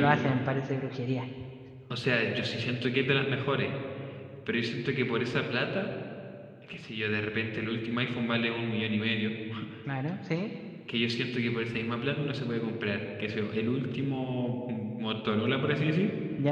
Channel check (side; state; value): both; identical; correlation 1.00